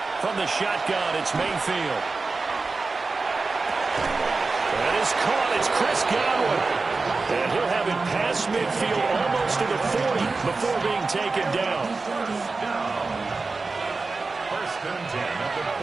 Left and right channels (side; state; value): left; quieter; 3.9 dB